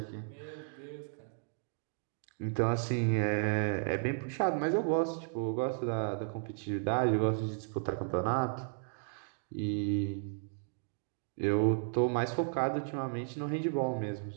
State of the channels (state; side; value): silent; left; digital silence